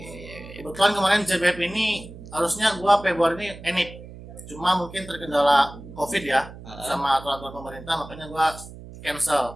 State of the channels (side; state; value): right; noise; hum, 15 dB below the sound